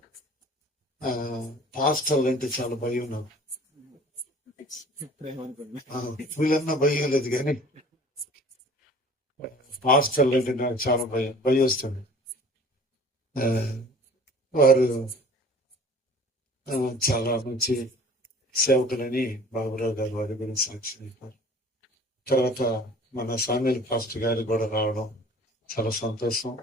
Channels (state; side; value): normal; both; correlation 0.47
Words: పాస్టర్లు అంటే చాలా భయం. నాకు వీళ్ళన్నా భయం లేదు, కానీ పాస్టర్లు అంటే నాకు చాలా భయం వస్తుంది. వారు చాలా మంచి సేవకులని బాబురావు గారు వారి గురించి సాక్షి చెప్పారు. తర్వాత మన సామ్యుల్ పాస్టర్ గారు కూడా రావడం చాలా సంతోషం.